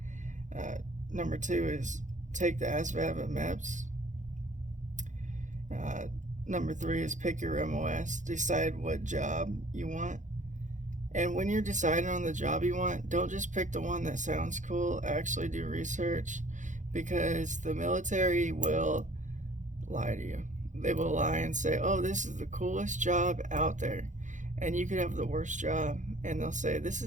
Uh, Number two is take the ASVAB at MEPS. Uh, Number three is pick your MOS, decide what job you want. And when you're deciding on the job you want, don't just pick the one that sounds cool. Actually do research, because the military will lie to you. They will lie and say, oh, this is the coolest job out there. And you could have the worst job, and they'll say, this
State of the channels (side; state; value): left; late; 0.36 ms